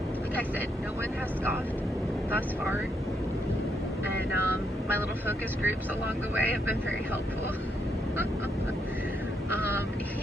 Like I said, no one has gone thus far. And my little focus groups along the way have been very helpful.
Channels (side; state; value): both; normal; correlation 0.77